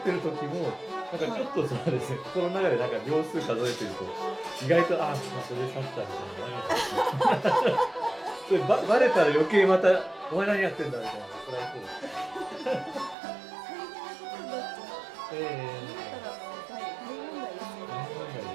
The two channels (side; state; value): left; drops out; at 13.2 s